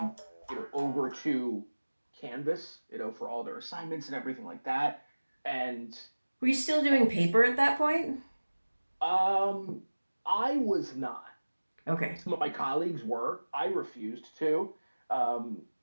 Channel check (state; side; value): inverted; both; correlation -1.00